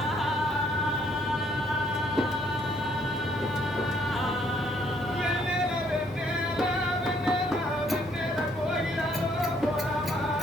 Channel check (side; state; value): both; normal; correlation 0.66